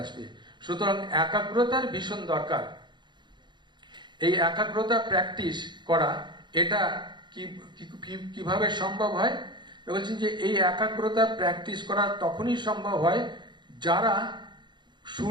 আসবে। সুতরাং একাগ্রতার ভীষণ দরকার। এই একাগ্রতা প্র্যাকটিস করা, এটা কিভাবে সম্ভব হয়? বলছেন যে এই একাগ্রতা প্র্যাকটিস করা তখনই সম্ভব হয় যারা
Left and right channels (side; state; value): left; late; 0.22 ms